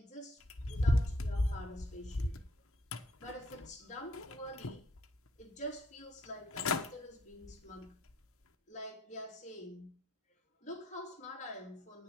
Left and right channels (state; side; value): normal; both; correlation 0.69